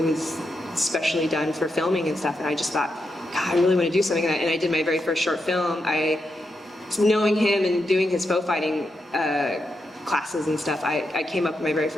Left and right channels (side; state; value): both; normal; correlation 0.85